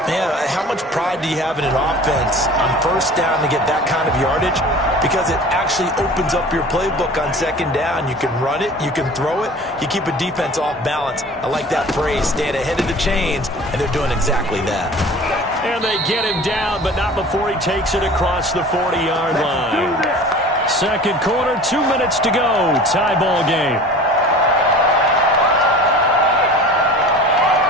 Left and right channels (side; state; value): both; normal; correlation 0.41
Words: Yeah, how much pride do you have in an offense on 1st down to get that kind of yardage? Because it actually opens up your playbook on 2nd down. You can run it, you can throw it, you keep a defense off balance. I like that phrase, staying ahead of the chains, and they're doing exactly that. And they get him down, but not before he takes it across the 40-yard line. 2nd quarter, 2 minutes to go. Tie ball game.